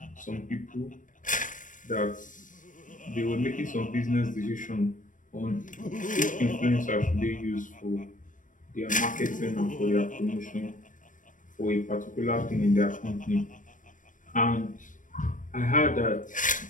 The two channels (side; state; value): right; late; 0.38 ms